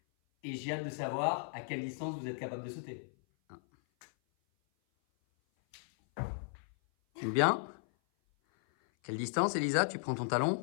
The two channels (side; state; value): right; silent; 54 dB below the other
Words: et j'ai hâte de savoir à quelle distance vous êtes capable de sauter. Bien. Quelle distance, Elisa? Tu prends ton